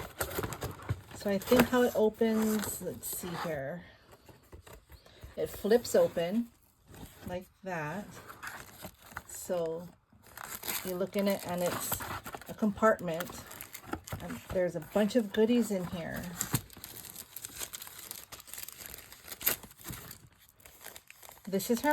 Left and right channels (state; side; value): identical; both; correlation 1.00